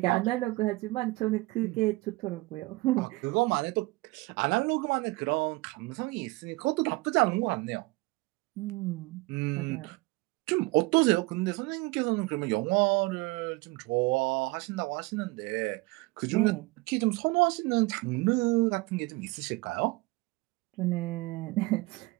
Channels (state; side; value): quieter; left; 23.0 dB